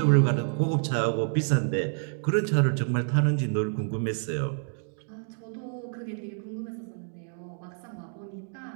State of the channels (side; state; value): left; silent; 59 dB below the other